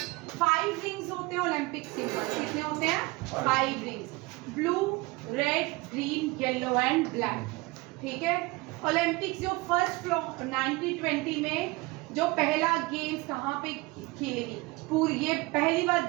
5 रिंग्स होते हैं ओलंपिक सिंबल। कितने होते हैं? 5 rings, blue, red, green, yellow and black, ठीक है। ओलंपिक्स जो फर्स्ट 1920 में जो पहला गेम्स कहाँ पे खेलेगी पूरी, ये पहली बार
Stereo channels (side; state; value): left; quieter; 23.2 dB